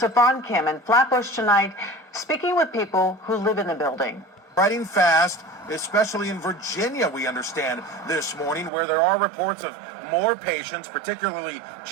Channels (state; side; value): drops out; left; at 8.7 s